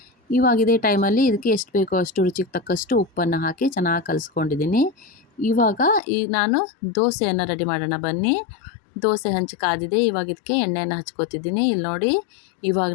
ಇವಾಗ ಇದೇ ಟೈಮಲ್ಲಿ ಇದಕ್ಕೆ ಎಷ್ಟು ಬೇಕೋ ಅಷ್ಟು ರುಚಿಗೆ ತಕ್ಕಷ್ಟು ಉಪ್ಪನ್ನು ಹಾಕಿ ಚೆನ್ನಾಗಿ ಕಲಿಸ್ಕೊಂಡಿದ್ದೀನಿ. ಇವಾಗ ನಾನು ದೋಸೆಯನ್ನು ರೆಡಿ ಮಾಡೋಣ ಬನ್ನಿ. ದೋಸೆ ಹಂಚು ಕಾದಿದೆ. ಇವಾಗ ಇದಕ್ಕೆ ಎಣ್ಣೆಯನ್ನು ಹಚ್ಕೋತಿದ್ದೀನಿ. ಇಲ್ಲಿ ನೋಡಿ, ಇವಾಗ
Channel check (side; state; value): right; drops out; at 6.0 s